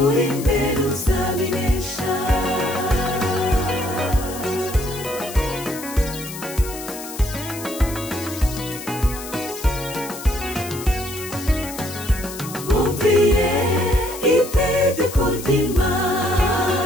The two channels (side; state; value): left; noise; hiss, 12 dB below the sound